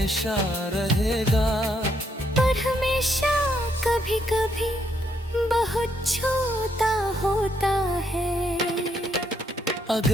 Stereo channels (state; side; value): normal; both; correlation 0.74